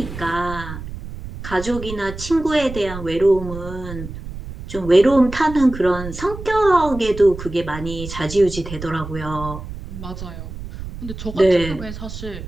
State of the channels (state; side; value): noise; right; rumble, 10 dB below the sound